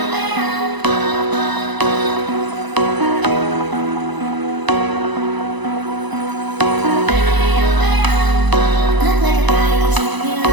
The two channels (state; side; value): late; left; 1.0 ms